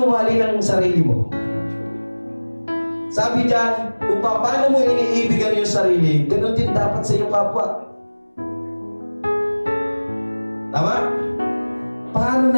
mahalin ang sarili mo? Sabi dyan, kung paano mo iniibigan yung sarili, ganun din dapat sa iyong kapwa. Tama? Paano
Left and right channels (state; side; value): inverted; both; correlation -1.00